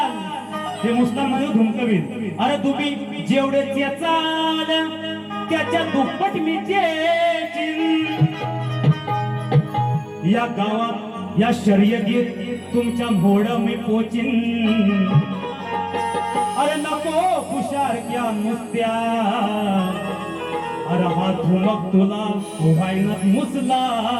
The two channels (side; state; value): both; identical; correlation 1.00